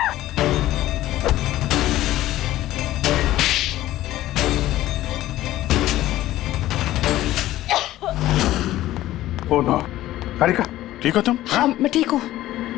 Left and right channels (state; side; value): quieter; right; 15.0 dB